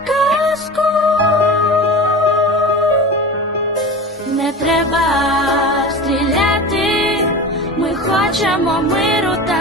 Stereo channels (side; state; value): both; normal; correlation 0.31